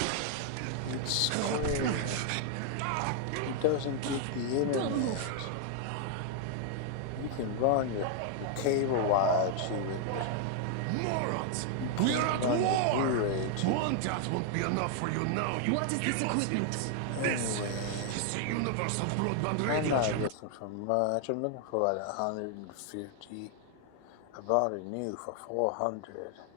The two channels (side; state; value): both; different; correlation 0.00